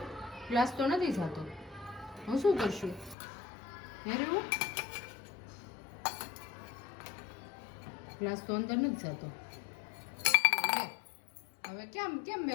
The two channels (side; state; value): right; drops out; at 3.2 s